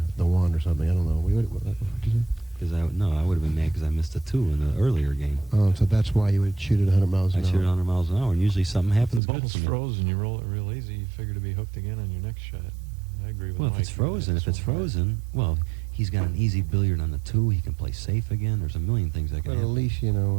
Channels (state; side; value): drops out; left; at 9.2 s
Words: 1 or something. I don't know. What did you say? Because I would have been mad because I missed a 2 in the earlier game. Oh, so that's why you would shoot it 100 miles an I hour. shoot it 100 miles an hour, and usually something If happens the good ball's to me. frozen, you roll it real easy, you figure to be hooked again on your next shot. I agree with Well, Mike. if it's frozen, well, he's got an easy billiard on the 2. He can play safe again. There's a million things that can But at happen. least, I